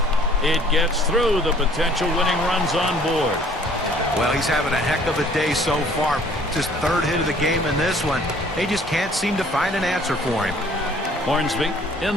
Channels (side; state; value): both; normal; correlation 0.56